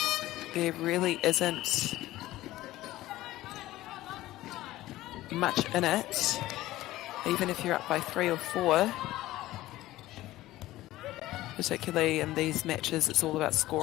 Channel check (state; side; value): quieter; right; 16.3 dB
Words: there really isn't much in it, even if you're up by 3 or 4. Particularly in these matches, it's all about